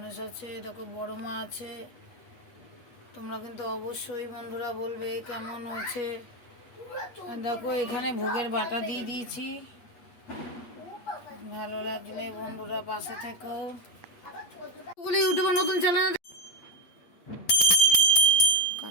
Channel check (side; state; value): right; late; 8.3 ms